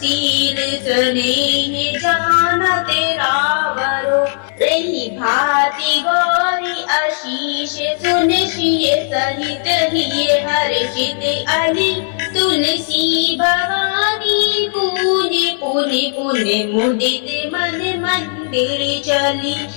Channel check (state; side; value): silent; right; digital silence